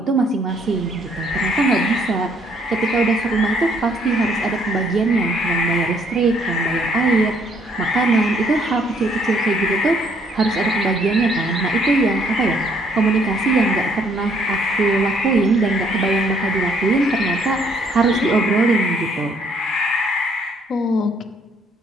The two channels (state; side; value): normal; both; correlation 0.66